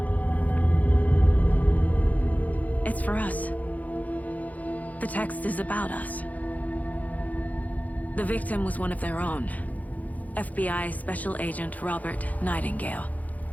It's for us. The text is about us. The victim was one of their own. FBI Special Agent Robert Nightingale.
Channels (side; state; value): right; late; 0.077 ms